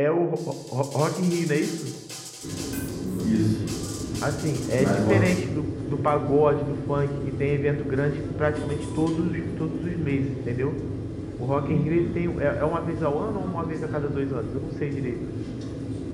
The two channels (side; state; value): both; identical; correlation 1.00